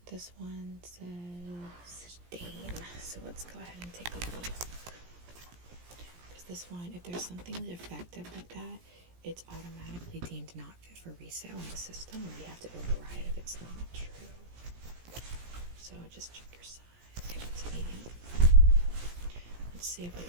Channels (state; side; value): late; left; 17 ms